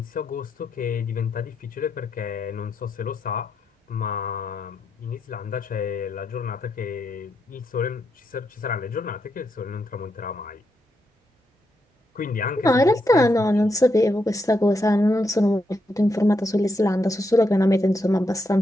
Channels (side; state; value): both; normal; correlation 0.81